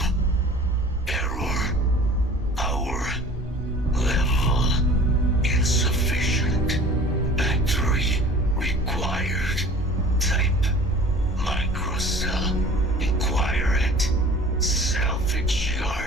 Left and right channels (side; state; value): both; normal; correlation 0.45